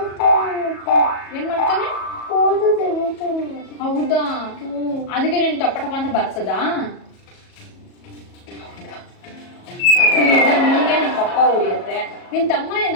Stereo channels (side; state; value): right; late; 37 ms